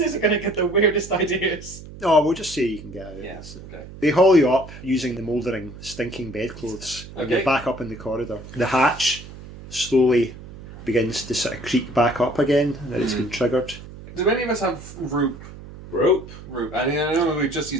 are going to get the weirdest ideas. Oh, we'll just say you can get out. Yes. Okay. They haul you up using the mouldering, stinking bedclothes, and Okay. you're back up in the corridor. The hatch slowly begins to sort of creak back up again, and it's been triggered. Do any of us have rope? Rope. I mean, I know we just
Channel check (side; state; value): right; noise; hum, 15 dB below the sound